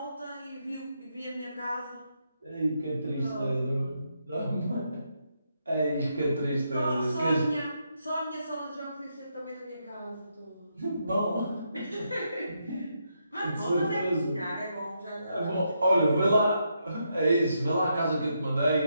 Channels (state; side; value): inverted; both; correlation -0.80